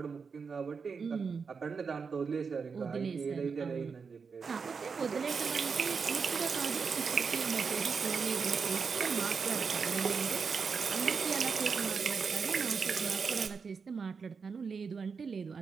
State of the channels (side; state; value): left; quieter; 5.4 dB